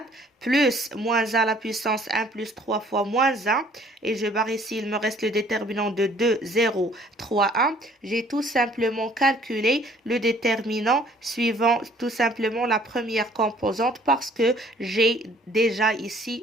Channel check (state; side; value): normal; both; correlation 0.57